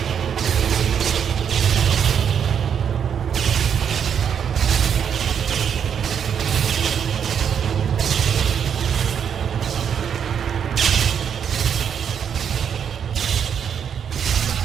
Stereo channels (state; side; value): quieter; left; 7.9 dB